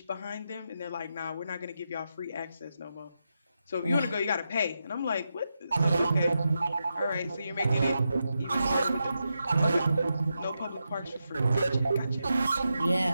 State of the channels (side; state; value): both; inverted; correlation -0.87